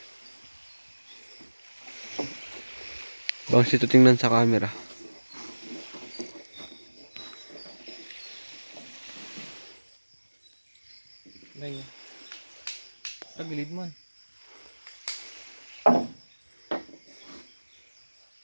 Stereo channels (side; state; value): both; inverted; correlation -1.00